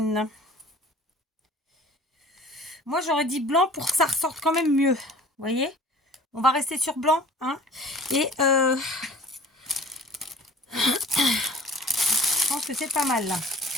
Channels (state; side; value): normal; both; correlation 0.46